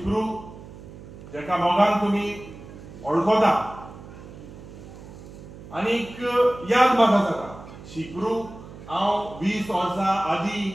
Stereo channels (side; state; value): right; noise; hum, 16 dB below the sound